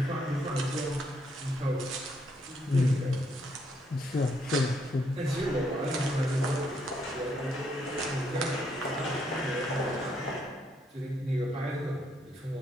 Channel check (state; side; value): normal; both; correlation 0.74